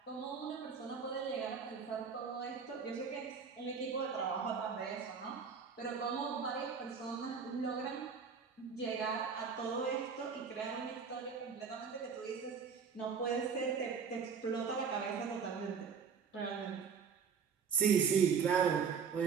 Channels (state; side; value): quieter; left; 6.2 dB